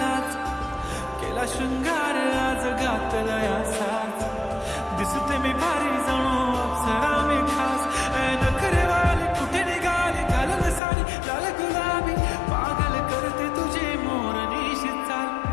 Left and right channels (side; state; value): right; drops out; at 10.8 s